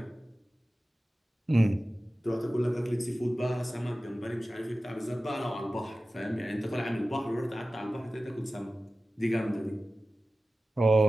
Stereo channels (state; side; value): normal; both; correlation 0.96